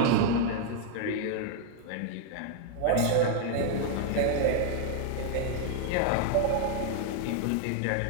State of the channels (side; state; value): both; different; correlation 0.00